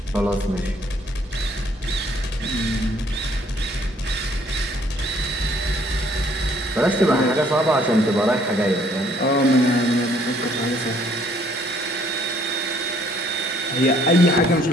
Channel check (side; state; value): both; normal; correlation 0.63